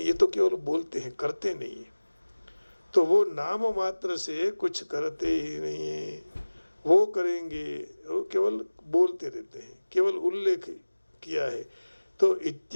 तो केवल बोलते हैं, करते नहीं है। तो वो नाम मात्र से कुछ करते ही नहीं है। वो करेंगे, वो केवल बोलते रहते हैं, केवल उल्लेख किया है। तो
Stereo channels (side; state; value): both; inverted; correlation -1.00